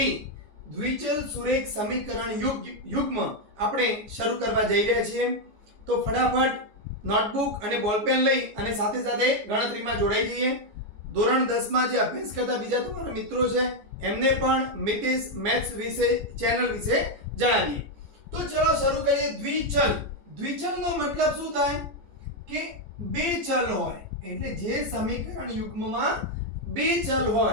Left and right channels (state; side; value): late; left; 14 ms